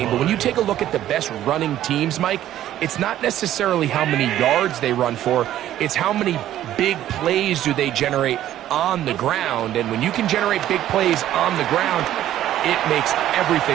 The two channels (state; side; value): quieter; left; 12.5 dB